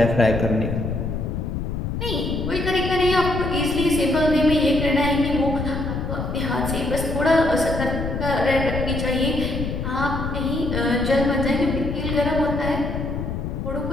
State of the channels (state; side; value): noise; left; rumble, 4 dB below the sound